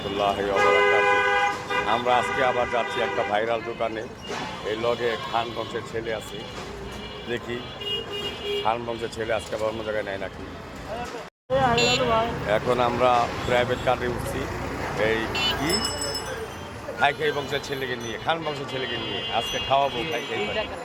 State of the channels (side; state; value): both; identical; correlation 1.00